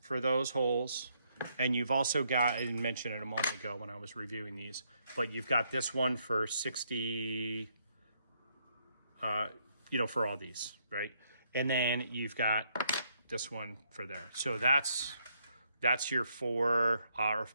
for those holes, and you've also got, I didn't mention it a moment ago when I was reviewing these, but you've got this one for 60, for all these, right? And then you've got this one for there. So that's your five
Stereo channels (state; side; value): inverted; both; correlation -0.73